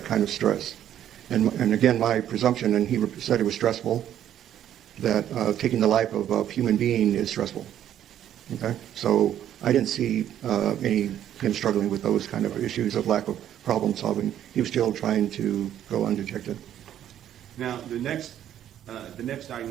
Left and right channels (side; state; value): left; quieter; 10.9 dB